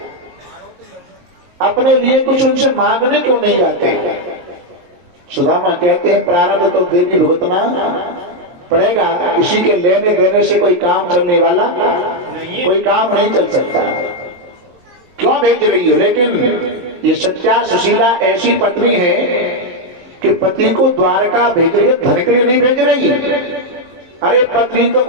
अपने लिए कुछ उनसे मांगने क्यों नहीं जाते? सुदामा कहते हैं प्रारब्ध तो देवी भुगतना पड़ेगा, किसी के लेने देने से कोई काम चलने वाला कोई काम नहीं चल सकता। क्यों भेज रही हो? लेकिन ये सत्या सुशीला ऐसी पत्नी है कि पति को द्वारका भेज रही है, धन के लिए नहीं भेज रही। अरे पत्नी तो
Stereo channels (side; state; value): left; late; 22 ms